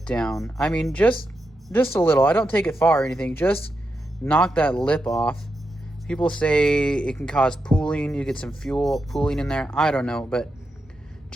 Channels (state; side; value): normal; both; correlation 0.86